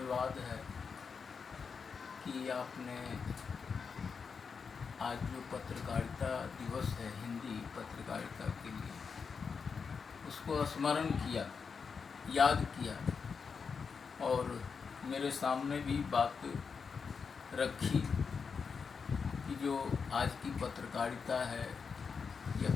है कि आपने आज जो पत्रकारिता दिवस है हिंदी पत्रकारिता के लिए, उसको स्मरण किया, याद किया और मेरे सामने भी बात रखी कि जो आज की पत्रकारिता है या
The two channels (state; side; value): quieter; right; 5.6 dB